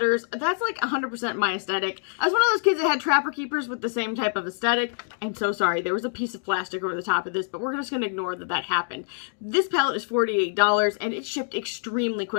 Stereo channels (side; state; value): right; silent; digital silence